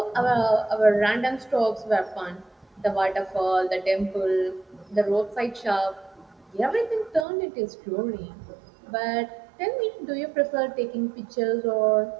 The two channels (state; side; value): drops out; left; at 7.2 s